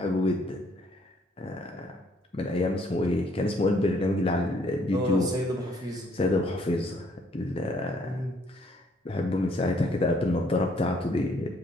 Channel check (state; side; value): normal; both; correlation 0.65